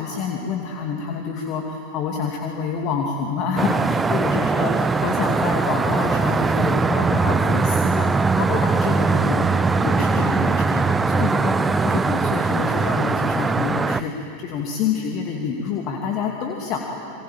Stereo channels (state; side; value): normal; both; correlation 0.68